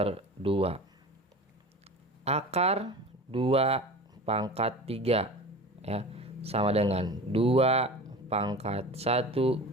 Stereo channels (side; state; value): both; normal; correlation 0.35